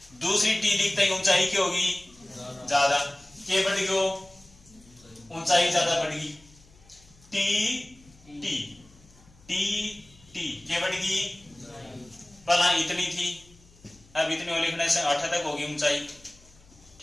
दूसरी टी लिखते ही ऊंचाई की होगी ज्यादा, के बढ़ गयो ऊंचाई ज्यादा बढ़ गई, टी टी टी टी के बढ़ गई, पहला इतनी थी अब इतनी लिखने से 8 तक होगी ऊंचाई,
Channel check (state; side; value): noise; left; hum, 27 dB below the sound